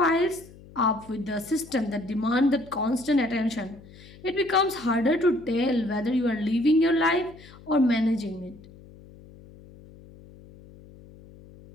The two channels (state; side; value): noise; left; hum, 21 dB below the sound